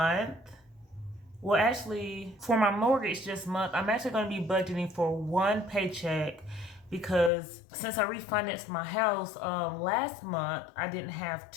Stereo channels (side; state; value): right; drops out; at 7.3 s